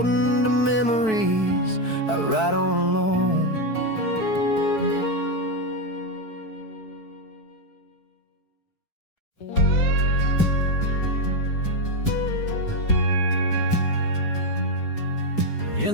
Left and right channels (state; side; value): late; right; 4.6 ms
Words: the memories I ride on alone.